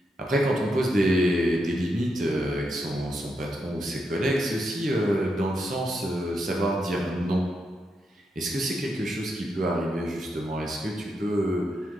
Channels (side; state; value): both; normal; correlation 0.83